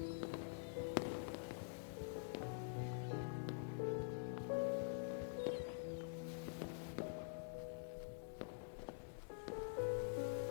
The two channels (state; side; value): silent; right; digital silence